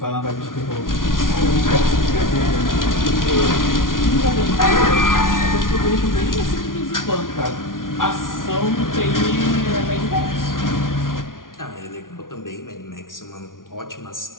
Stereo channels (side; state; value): right; late; 0.89 ms